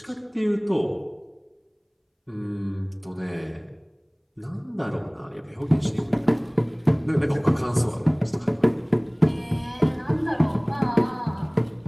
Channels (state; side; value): identical; both; correlation 1.00